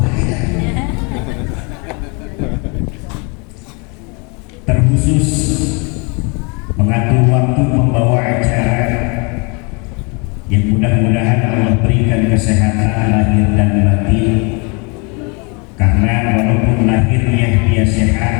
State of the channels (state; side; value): quieter; right; 32.1 dB